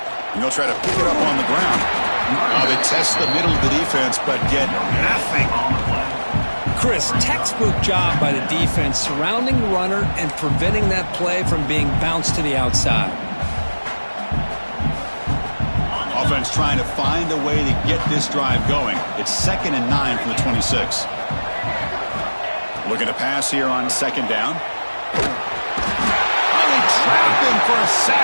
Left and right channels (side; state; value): both; inverted; correlation -1.00